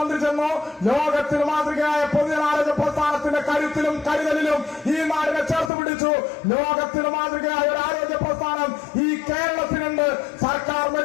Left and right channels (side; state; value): right; drops out; at 5.7 s